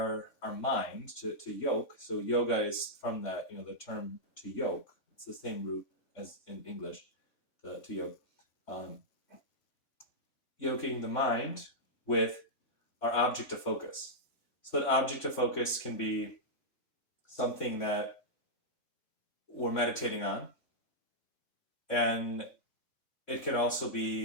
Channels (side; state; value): right; late; 3.6 ms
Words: mind to yoke. So yoga is from that, the term to yoke. It's the same root as in English, to yoke. Um, Yoking the mind with our object of focus. So that object of focus can be something that we're meditating on, and it can also